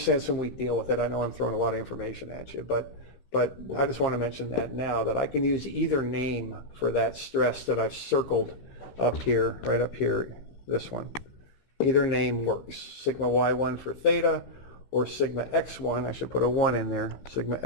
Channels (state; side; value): late; right; 15 ms